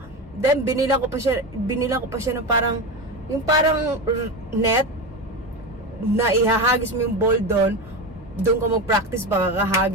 then binila ko pa siya ng parang, yung parang net na ihahagis mo yung ball doon ka mag-practice ba,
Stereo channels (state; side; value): normal; both; correlation 0.20